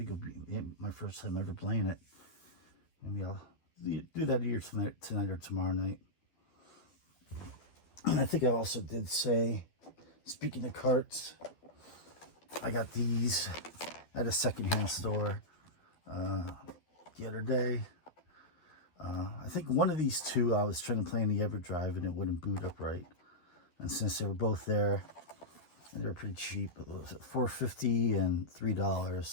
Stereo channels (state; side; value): late; right; 12 ms